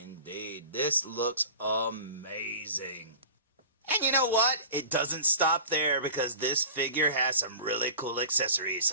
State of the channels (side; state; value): both; inverted; correlation -0.37